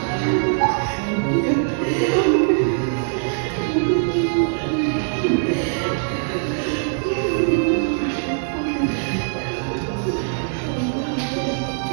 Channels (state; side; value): silent; left; 64 dB below the other